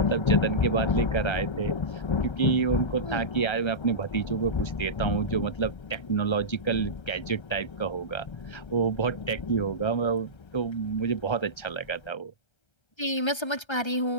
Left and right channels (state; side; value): late; right; 1.3 ms